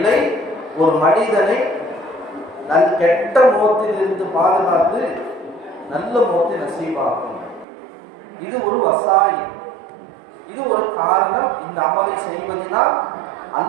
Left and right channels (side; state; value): left; drops out; at 7.7 s